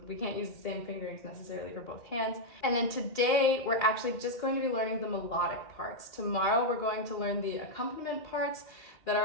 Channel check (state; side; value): late; right; 2.3 ms